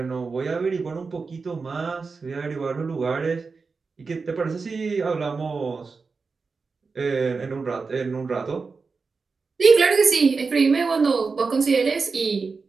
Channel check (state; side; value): quieter; left; 4.6 dB